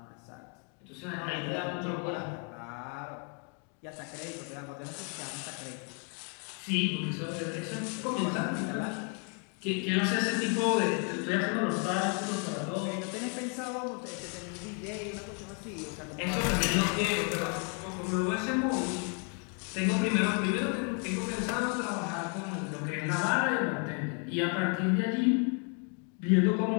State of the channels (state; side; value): quieter; right; 39.4 dB